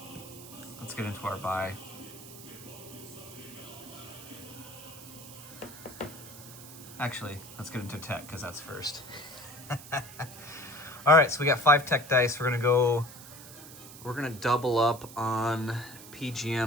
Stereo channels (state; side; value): noise; right; hiss, 16 dB below the sound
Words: Let's get into our buy. Actually, let's get into tech because that's first. All right, so we got 5 tech dice. We're gonna double up on